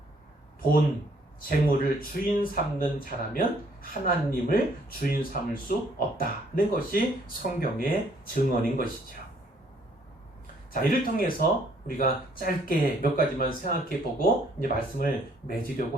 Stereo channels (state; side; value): normal; both; correlation 0.64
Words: 돈, 재물을 주인 삼는 자라면 하나님을 주인 삼을 수 없다는 것이 성경의 증언인 것이죠. 자, 이를 통해서 우리가 짧게 몇 가지만 생각해 보고 이제 말씀을 맺으려고